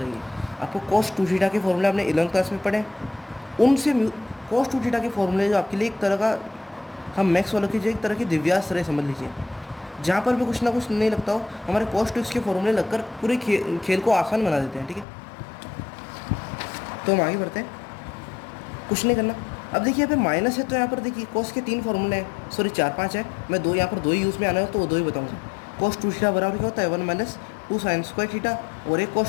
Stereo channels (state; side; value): drops out; right; at 15.1 s